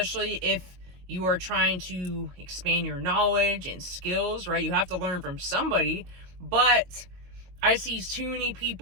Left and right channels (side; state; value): left; late; 22 ms